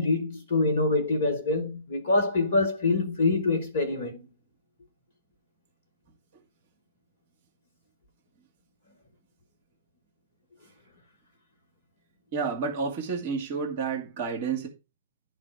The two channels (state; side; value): inverted; both; correlation -0.51